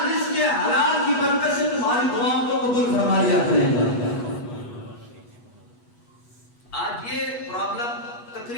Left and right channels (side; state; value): right; late; 8.2 ms